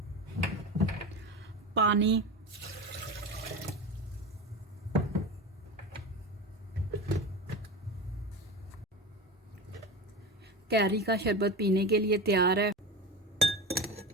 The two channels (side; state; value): both; normal; correlation 0.25